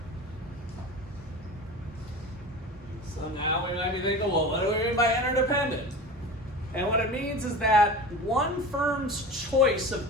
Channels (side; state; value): both; normal; correlation 0.33